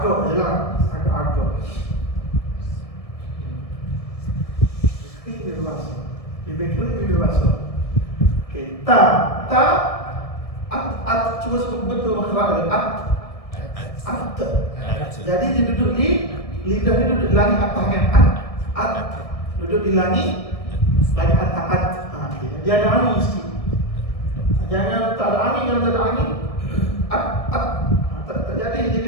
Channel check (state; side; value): late; right; 1.6 ms